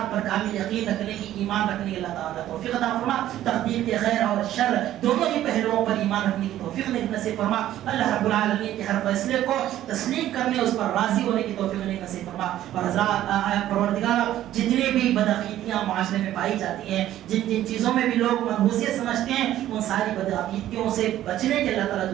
پر کامل یقین رکھنے کی, ایمان رکھنے کی اللہ تعالیٰ توفیق عطا فرمائے. تقدیر کے خیر اور شر دونوں ہی پہلوؤں پر ایمان رکھنے کی توفیق نصیب فرما. اللہ رب العالمین کے ہر فیصلے کو تسلیم کرنے, اس پر راضی ہونے کی توفیق نصیب فرما. اور حضرات پروردگار جتنی بھی بدعقیدگیاں معاشرے میں پائی جاتی ہیں, جن چیزوں میں بھی لوگ منحوسیت سمجھتے ہیں, ان ساری بدعقیدگیوں سے بچنے کے اللہ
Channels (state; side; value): quieter; left; 12.9 dB